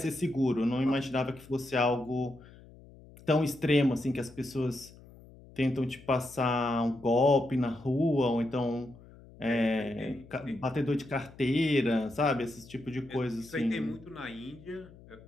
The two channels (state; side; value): noise; left; hum, 21 dB below the sound